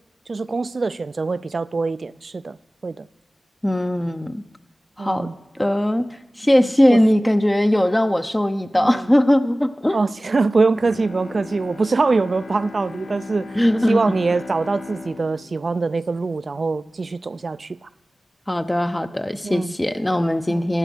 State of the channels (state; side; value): normal; both; correlation 0.97